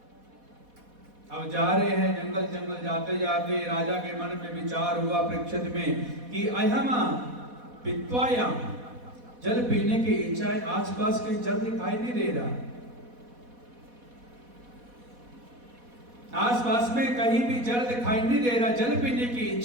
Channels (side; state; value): left; late; 4.1 ms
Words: अब जा रहे हैं जंगल जंगल जाते जाते राजा के मन में विचार हुआ परीक्षित में कि अहमा पित्वायाम, जल पीने की इच्छा है, आसपास कहीं जल दिखाई नहीं दे रहा, आसपास में कहीं भी जल दिखाई नहीं दे रहा, जल पीने की